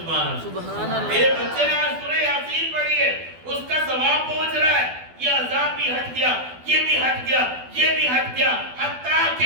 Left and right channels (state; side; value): late; left; 12 ms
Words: اللہ، تیرے بچے نے آج سورہ یاسین پڑھی ہے، اس کا ثواب پہنچ رہا ہے، یہ عذاب بھی ہٹ گیا، یہ بھی ہٹ گیا، یہ بھی ہٹ گیا، حتیٰ